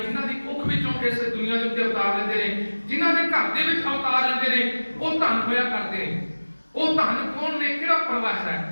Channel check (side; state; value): both; inverted; correlation -1.00